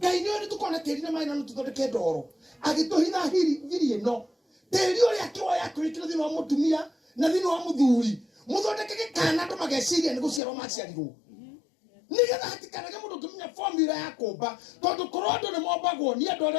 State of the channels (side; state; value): right; drops out; at 10.4 s